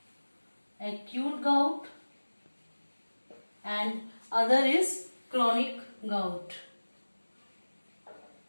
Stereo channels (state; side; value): inverted; both; correlation -1.00